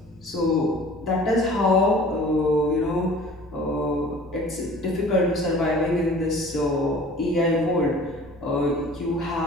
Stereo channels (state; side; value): normal; both; correlation 0.47